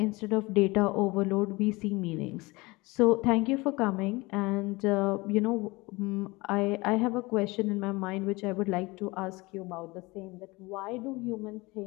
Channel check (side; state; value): right; quieter; 23.4 dB